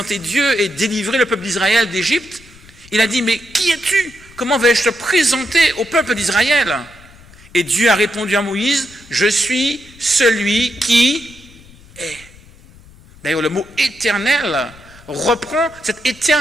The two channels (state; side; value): noise; left; rumble, 24 dB below the sound